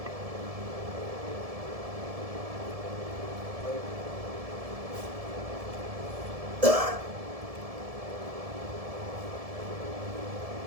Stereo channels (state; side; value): late; left; 1.7 ms